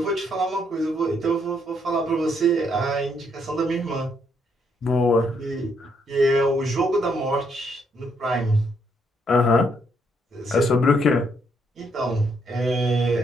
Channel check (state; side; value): normal; both; correlation 0.73